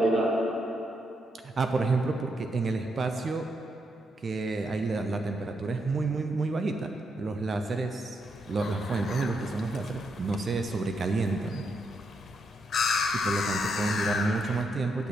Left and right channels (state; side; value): normal; both; correlation 0.80